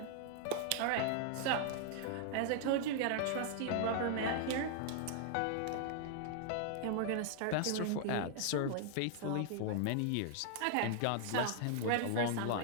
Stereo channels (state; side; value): different; both; correlation 0.00